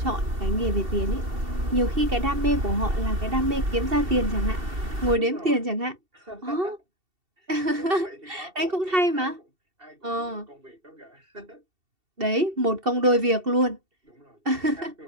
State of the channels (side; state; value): left; late; 2.7 ms